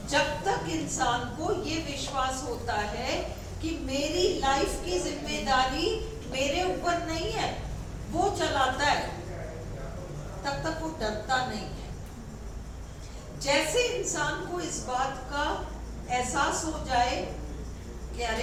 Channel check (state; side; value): identical; both; correlation 1.00